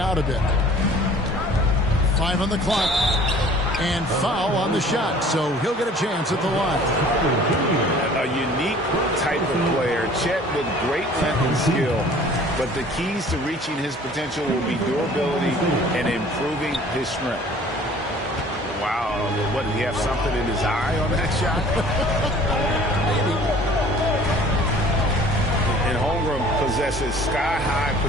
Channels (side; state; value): both; normal; correlation 0.50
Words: out a bit. 5 on the clock. And foul on the shot, so he'll get a chance at the line. A unique type of player. Chet with great length and skill. But the keys to reaching his potential will be durability and improving his strength. Wow, what, did he have something in his eye on that shot? And Holmgren possesses sky-high